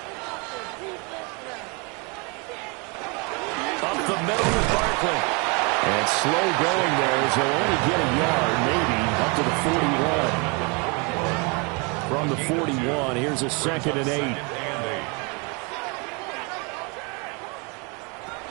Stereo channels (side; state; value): left; quieter; 31.6 dB